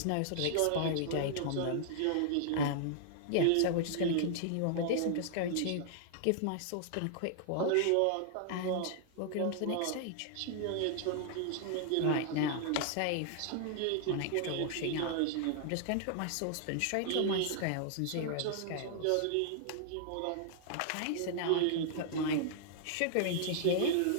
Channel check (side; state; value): both; different; correlation -0.01